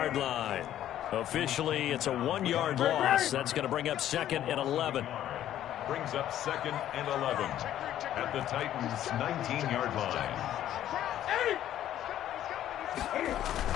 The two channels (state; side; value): quieter; right; 11.8 dB